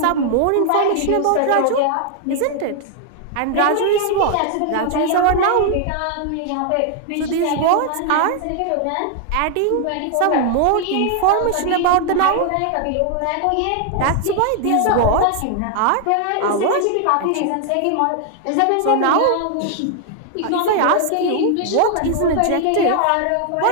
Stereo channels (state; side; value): different; both; correlation 0.00